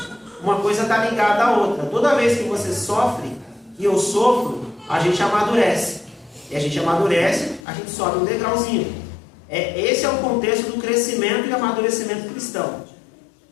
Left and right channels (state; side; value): drops out; right; at 7.6 s